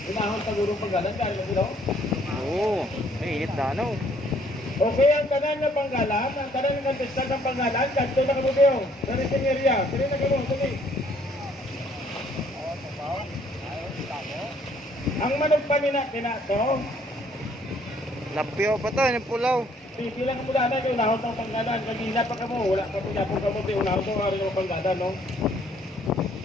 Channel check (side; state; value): both; normal; correlation 0.64